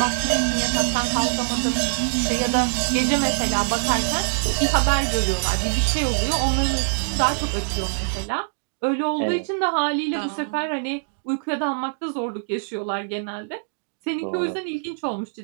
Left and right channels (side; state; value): left; silent; digital silence